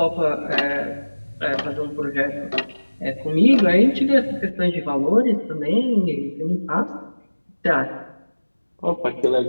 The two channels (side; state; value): both; inverted; correlation -1.00